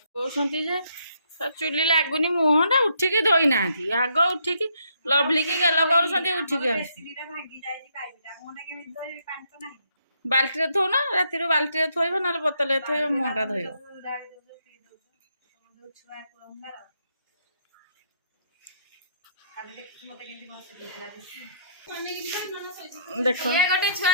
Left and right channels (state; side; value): inverted; both; correlation -0.71